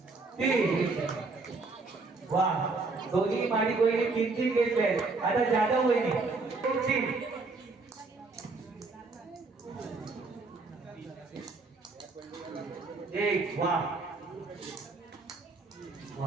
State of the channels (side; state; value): left; quieter; 3.8 dB